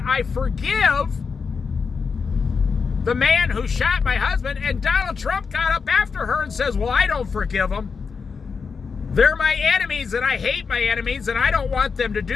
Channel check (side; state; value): right; quieter; 5.4 dB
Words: I forgive the man who shot my husband, and Donald Trump got up after her and says, well, I don't forgive them. They're my enemies, and I hate my enemies, and I don't want them to